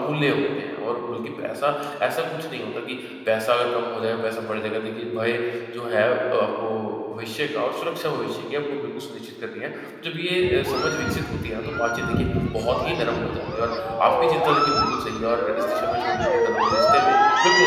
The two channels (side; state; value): both; identical; correlation 1.00